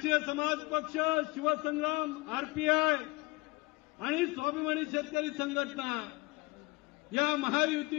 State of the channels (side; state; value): right; quieter; 24.4 dB